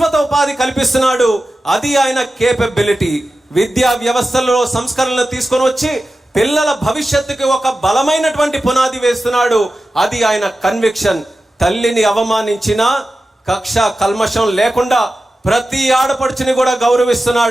ఉపాధి కల్పిస్తున్నాడు. అది ఆయన కేపబిలిటీ. విద్యా వ్యవస్థలో సంస్కరణలు తీసుకొని వచ్చి పిల్లల భవిష్యత్తుకి ఒక బలమైనటువంటి పునాది వేస్తున్నాడు. అది ఆయన కన్విక్షన్. తల్లిని అవమానించినా కక్ష కల్మషం లేకుండా ప్రతి ఆడపడుచుని కూడా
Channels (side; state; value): both; normal; correlation 0.94